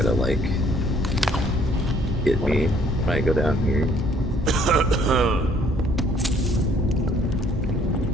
to, like, get me when I go down here.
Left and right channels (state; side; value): normal; both; correlation 0.61